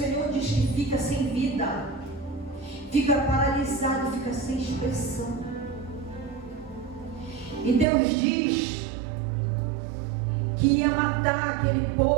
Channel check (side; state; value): left; drops out; at 7.9 s